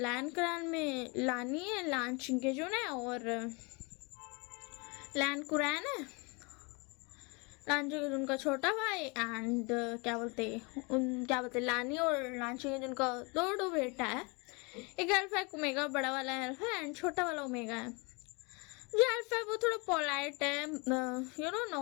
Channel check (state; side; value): quieter; right; 29.7 dB